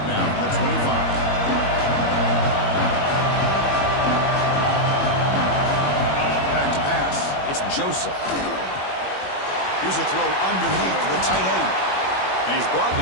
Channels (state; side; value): late; right; 21 ms